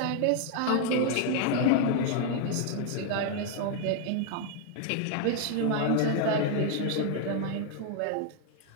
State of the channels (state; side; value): different; both; correlation 0.00